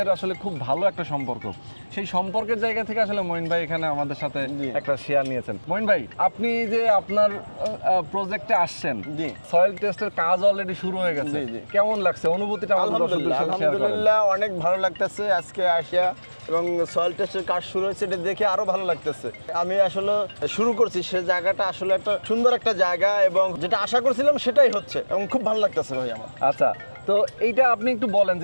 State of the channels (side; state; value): both; inverted; correlation -1.00